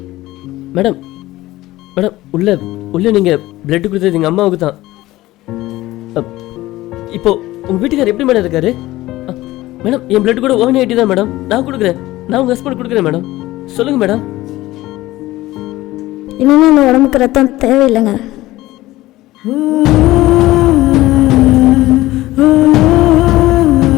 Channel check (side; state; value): right; quieter; 17.2 dB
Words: மேடம் மேடம், உள்ள நீங்க பிளட் கொடுத்தது எங்க அம்மாவுக்கு தான். இப்போ உங்க வீட்டுக்காரர் எப்படி மேடம் இருக்காரு? மேடம், என் பிளட் கூட ஓகே தான் மேடம். நான் கொடுக்குறேன், நான் உங்க ஹஸ்பண்ட் கொடுக்குறேன் மேடம். சொல்லுங்க மேடம். இனிமே உடம்புக்கு ரத்தம் தேவையில்லைங்க.